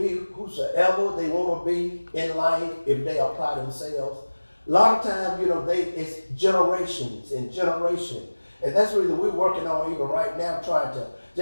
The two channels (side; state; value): both; inverted; correlation -1.00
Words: whosoever they want to be in life if they apply themselves. A lot of times, it's generations and generation. And that's really we're working on even right now, trying to,